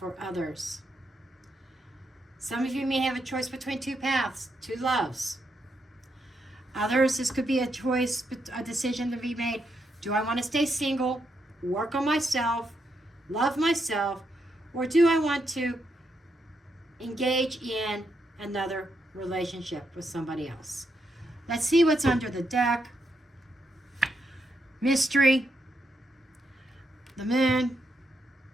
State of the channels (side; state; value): both; normal; correlation 0.81